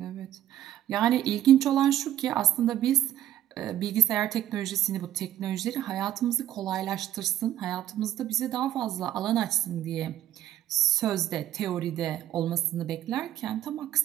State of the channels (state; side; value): quieter; left; 12.3 dB